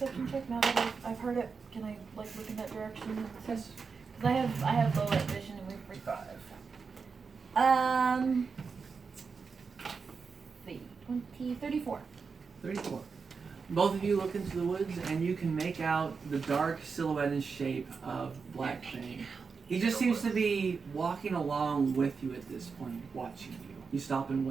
check now that I've heard it? Can I look in that direction? Yes. Because I have low light vision and refresh. 5. 34. 34. Both of you look into the woods, and you can make out the dark silhouette and shape of Black Fang. He just seems to be walking along with you at this point, watching you. You stop and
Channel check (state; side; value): quieter; left; 5.2 dB